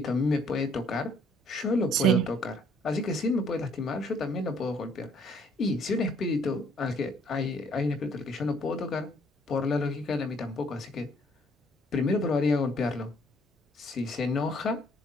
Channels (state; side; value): normal; both; correlation 0.63